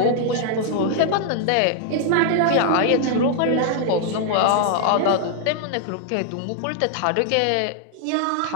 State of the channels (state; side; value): different; both; correlation 0.00